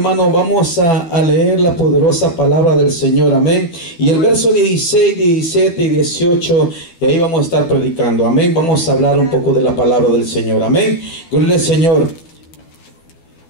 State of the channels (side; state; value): right; late; 12 ms